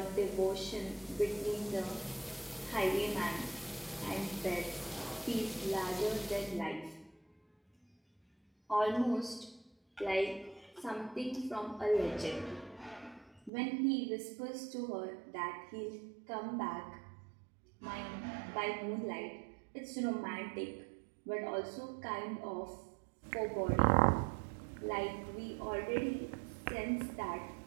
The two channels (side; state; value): left; drops out; at 13.5 s